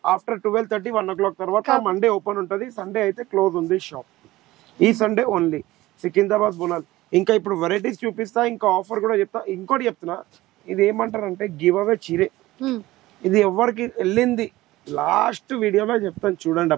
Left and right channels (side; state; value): left; quieter; 17.7 dB